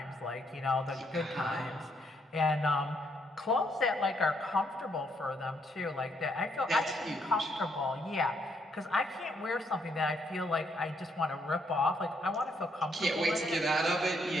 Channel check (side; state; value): both; normal; correlation 0.73